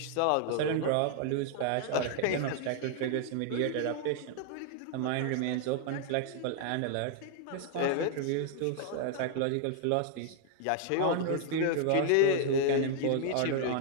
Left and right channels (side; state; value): both; different; correlation 0.00